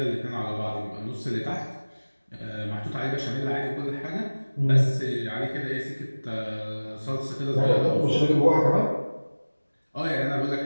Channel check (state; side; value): inverted; both; correlation -1.00